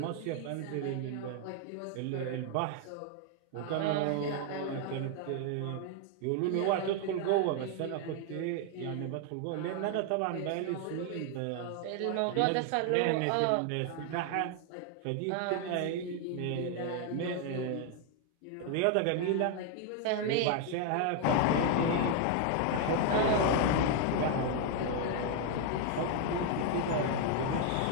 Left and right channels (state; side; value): different; both; correlation 0.00